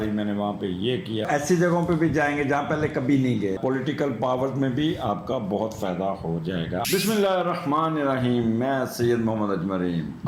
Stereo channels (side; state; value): both; identical; correlation 1.00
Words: میں نے وہاں پہ یہ کیا. ایسی جگہوں پہ بھی جائیں گے جہاں پہلے کبھی نہیں گئے. پولیٹیکل پاور میں بھی آپ کا بہت فائدہ ہو جائے گا. بسم اللہ الرحمن الرحیم. میں سید محمد اجمرین